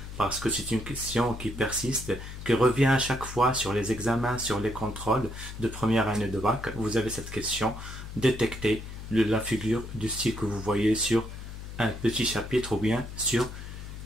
parce que c'est une question qui persiste, qui revient à chaque fois sur les examens, sur les contrôles de première année de bac. Vous avez cette question, détecter la figure du style que vous voyez sur un petit chapitre ou bien sur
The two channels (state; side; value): noise; left; hum, 10 dB below the sound